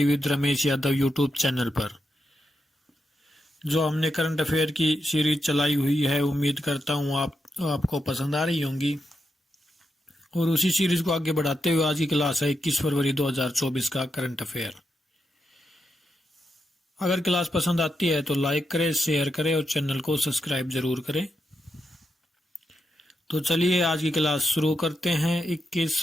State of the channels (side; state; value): both; normal; correlation 0.85